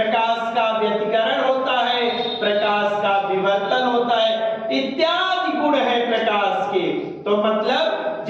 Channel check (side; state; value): both; identical; correlation 1.00